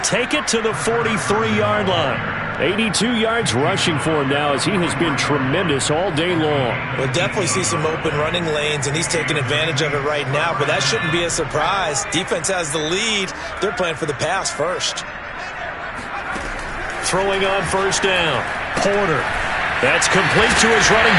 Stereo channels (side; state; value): both; identical; correlation 1.00